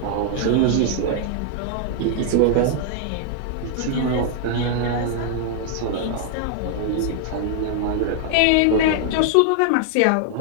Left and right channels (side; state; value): both; different; correlation -0.01